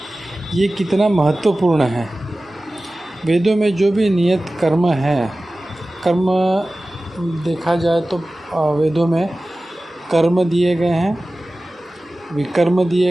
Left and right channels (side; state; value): both; normal; correlation 0.96